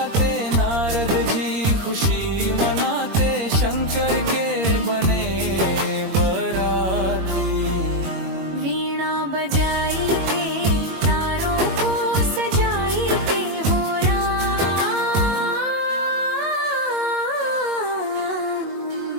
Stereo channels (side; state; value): left; late; 22 ms